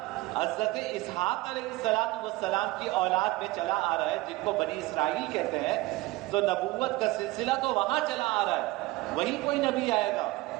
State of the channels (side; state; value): left; quieter; 20.0 dB